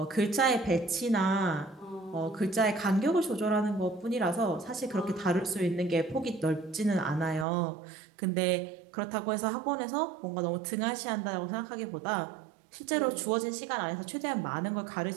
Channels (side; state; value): left; drops out; at 7.5 s